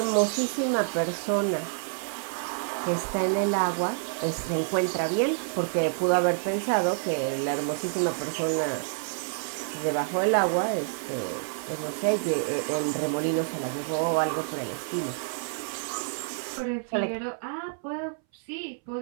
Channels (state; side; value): silent; left; 59 dB below the other